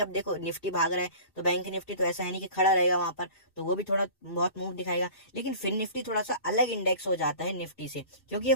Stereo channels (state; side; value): late; right; 2.7 ms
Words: देखो निफ्टी भाग रहा है तो बैंक निफ्टी तो ऐसा है नहीं कि खड़ा रहेगा वहां पर, तो वो भी थोड़ा बहुत मूव दिखाएगा। लेकिन फिन निफ्टी थोड़ा सा अलग इंडेक्स हो जाता है निफ्टी से, क्योंकि ये